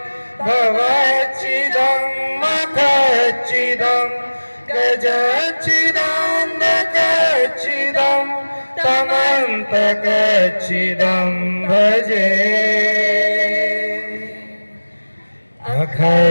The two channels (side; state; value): both; inverted; correlation -1.00